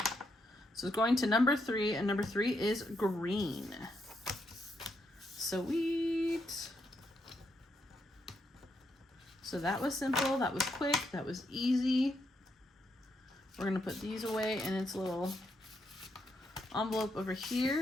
So it's going to number 3, and number 3 is green. Sweet. So that was simple, that was quick, that was easy. We're gonna put these away in its little envelope over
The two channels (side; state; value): both; normal; correlation 0.79